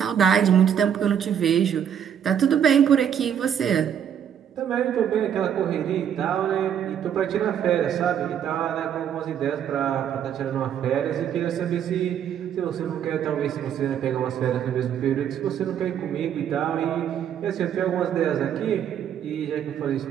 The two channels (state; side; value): quieter; left; 8.9 dB